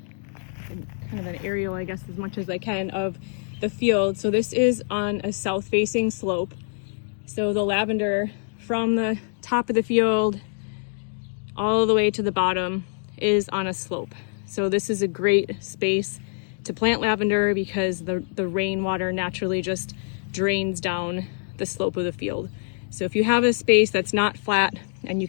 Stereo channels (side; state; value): right; silent; digital silence